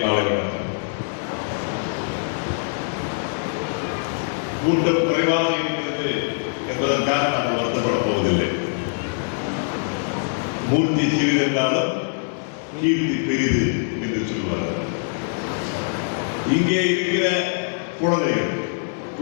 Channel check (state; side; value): silent; right; digital silence